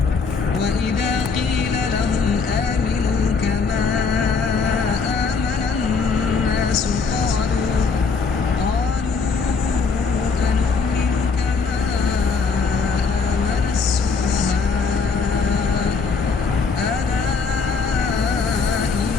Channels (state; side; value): quieter; right; 5.0 dB